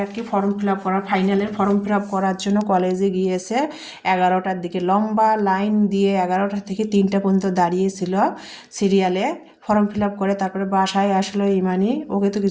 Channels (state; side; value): identical; both; correlation 1.00